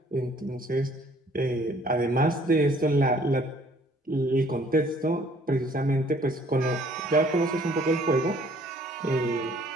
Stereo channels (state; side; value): normal; both; correlation 0.59